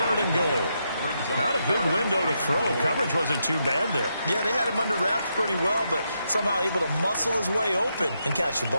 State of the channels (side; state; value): both; inverted; correlation -0.82